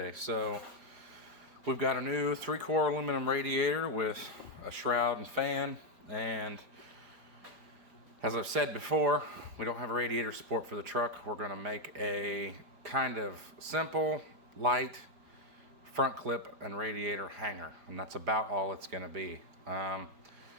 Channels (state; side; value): late; left; 4.9 ms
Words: So we've got a new 3-core aluminum radiator with a shroud and fan, and as I've said before, we don't have a radiator support for the truck. We're going to make a kind of simple, light front clip and radiator hanger, and that's about all it's going to be.